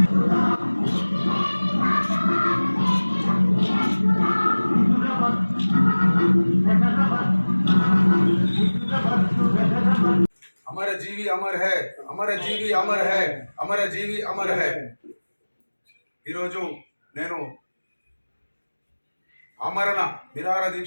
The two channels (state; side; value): inverted; both; correlation -1.00